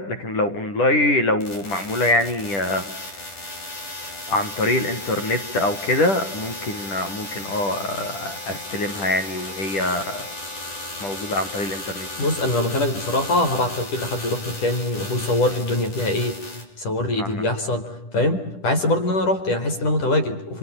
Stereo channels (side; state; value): right; late; 10 ms